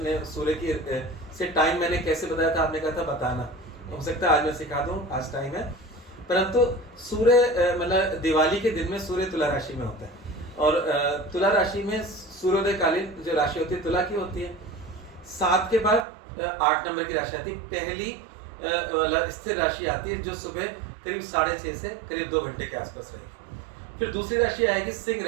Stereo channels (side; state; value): left; drops out; at 16.1 s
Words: ने सूर्य की से टाइम मैंने कैसे बताया था, आपने कहा था बताना, हो सकता है आज मैं सिखा दूं, आज टाइम है। परंतु सूर्य मतलब दिवाली के दिन में सूर्य तुला राशि में होता है, और तुला राशि में सूर्योदय कालीन जो राशि होती है तुला की होती है। 7 के बाद 8 नंबर की राशि आती है, पहली मतलब स्थिर राशि आती है, जो सुबह करीब 6:30 से करीब 2 घंटे के आसपास रहेगी। फिर दूसरी राशि आएगी सिंह